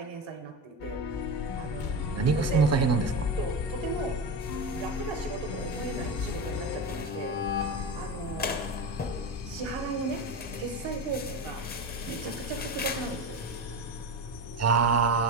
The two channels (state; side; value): normal; both; correlation 0.22